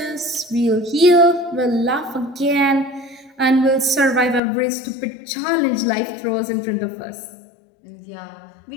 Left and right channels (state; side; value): drops out; right; at 4.4 s